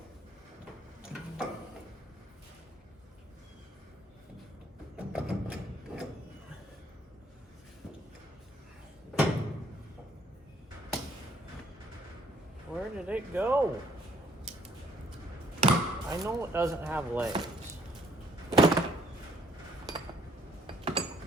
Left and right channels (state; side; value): normal; both; correlation 0.64